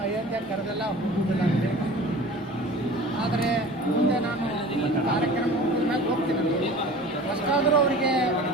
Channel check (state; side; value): normal; both; correlation 0.41